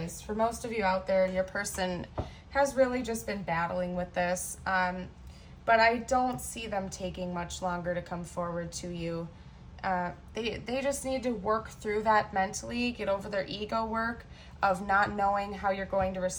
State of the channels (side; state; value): both; identical; correlation 1.00